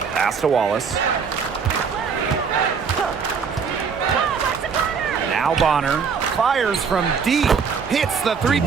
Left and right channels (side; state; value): left; quieter; 6.0 dB